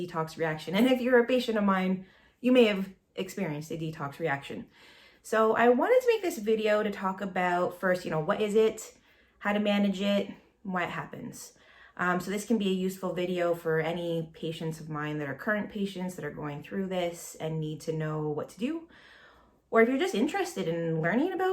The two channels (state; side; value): identical; both; correlation 1.00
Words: reaction. And if you're a patient of mine, you may have experienced a detox reaction. So I wanted to make this video to talk about first, what is it, how to manage it, and why it happens. So this can be a useful video for any patients of mine that are current patients that are going through this and need to know what to do. Or if you're just interested in learning